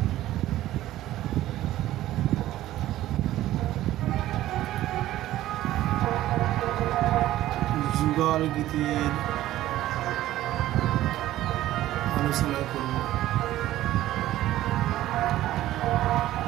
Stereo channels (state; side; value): quieter; left; 14.5 dB